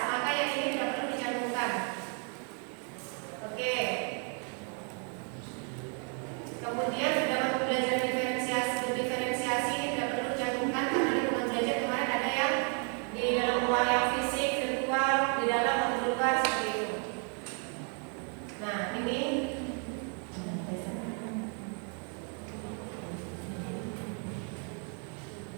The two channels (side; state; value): left; quieter; 39.8 dB